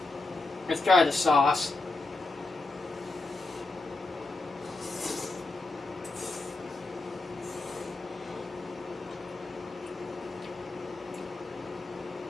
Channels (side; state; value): right; quieter; 3.3 dB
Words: let's try the sauce.